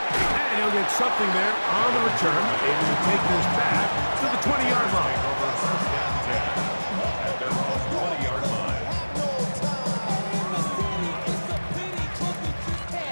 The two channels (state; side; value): inverted; both; correlation -1.00